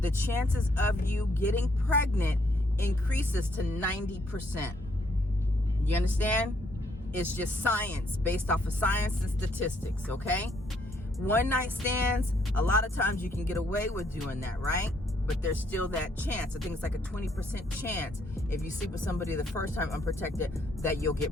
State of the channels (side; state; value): both; normal; correlation 0.70